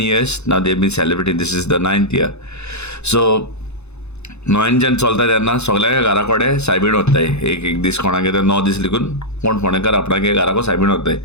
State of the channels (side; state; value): right; late; 0.81 ms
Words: years now. They've been celebrating. This is the 9th year. So Noyan जेन्ना चलता तेन्ना सगळ्या घरा कडेन सायबीण वताय. एक दीस कोणागे 9 दीस लिखून कोण फोंडेकार आपणागे घराको सायबीण वताय.